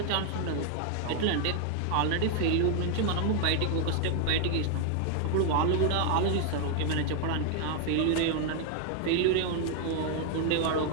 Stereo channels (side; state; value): both; different; correlation 0.00